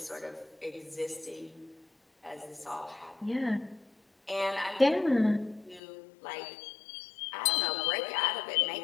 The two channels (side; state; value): right; drops out; at 5.8 s